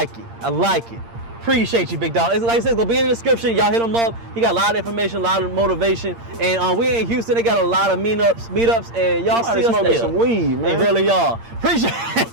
it. Appreciate you, big dog. It's, like I said, it's gonna be in the description. Y'all hit him up. He got a lot of information, a lot of motivation. And we in Houston, they got a lot of meetups, and y'all see us there. Some weed, man. They really are. Appreciate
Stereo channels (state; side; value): late; left; 8.7 ms